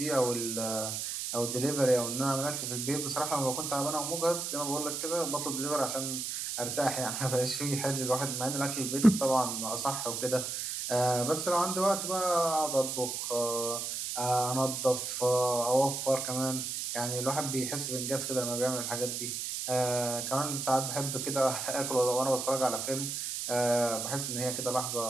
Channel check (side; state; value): right; noise; hiss, 3 dB below the sound